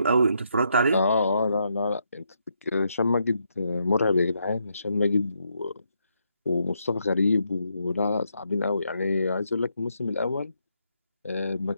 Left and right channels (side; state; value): both; inverted; correlation -0.78